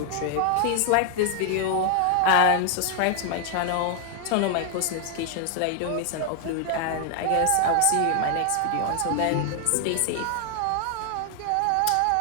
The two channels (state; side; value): different; both; correlation 0.00